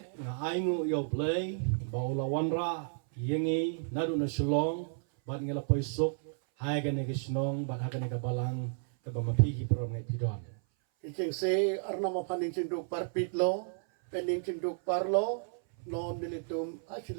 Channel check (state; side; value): silent; left; 56 dB below the other